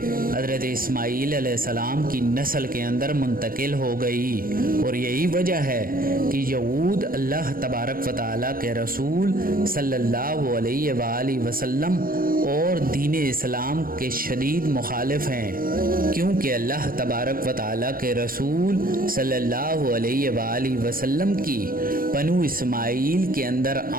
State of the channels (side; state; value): left; late; 0.42 ms